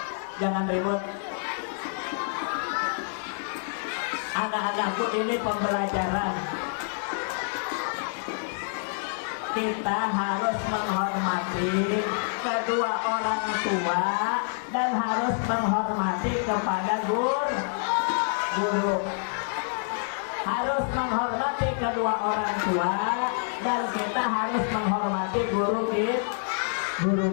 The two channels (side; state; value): right; silent; digital silence